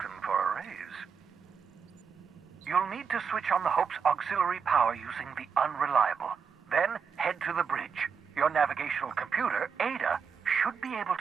for a raise. You'll need to switch on the Hope's auxiliary power using the Unreliable. Then head to the bridge. Your navigational computer, Ada, should be able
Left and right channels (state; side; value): quieter; left; 6.3 dB